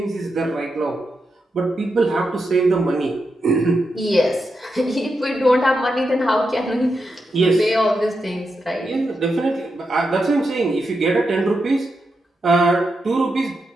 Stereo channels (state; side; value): normal; both; correlation 0.86